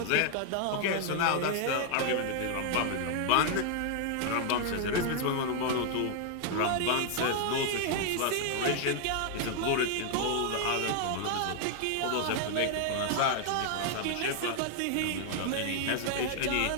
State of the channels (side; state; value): both; different; correlation 0.00